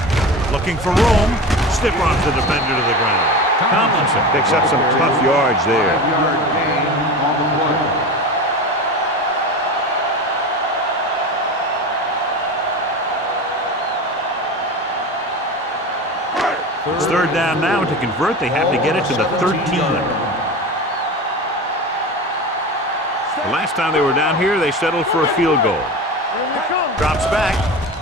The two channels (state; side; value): normal; both; correlation 0.29